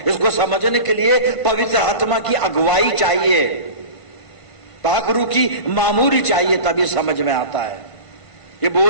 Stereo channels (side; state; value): right; late; 1.5 ms